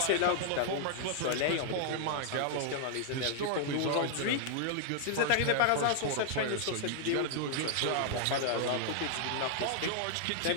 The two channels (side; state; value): both; different; correlation -0.01